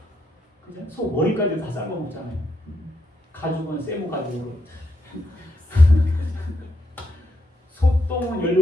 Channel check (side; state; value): both; normal; correlation 0.79